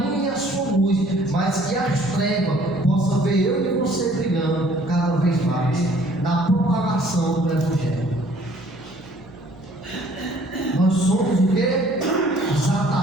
e a sua luz, mas que as trevas possam ver eu e você brilhando cada vez mais na propagação do Evangelho. Nós somos o quê? Os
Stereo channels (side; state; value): right; noise; hum, 23 dB below the sound